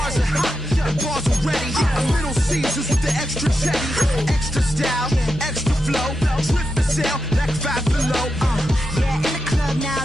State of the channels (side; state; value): both; normal; correlation 0.88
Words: are hot, and bars are ready. I'm Little Caesars with the extra chetty. Extra style, extra flow. Slip for sale, like 5 below. Yeah, in the club now